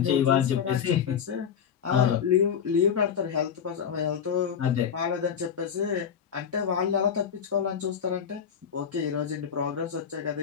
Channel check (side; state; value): right; quieter; 7.6 dB